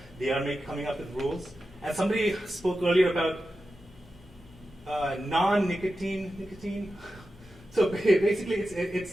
They are coming up with rules. And somebody spoke earlier about nicotine. So basically,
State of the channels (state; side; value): normal; both; correlation 0.92